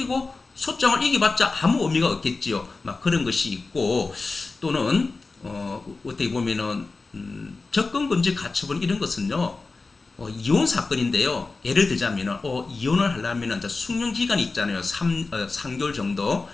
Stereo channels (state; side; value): quieter; right; 3.8 dB